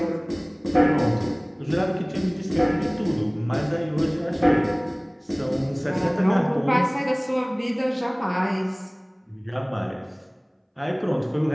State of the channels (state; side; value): identical; both; correlation 1.00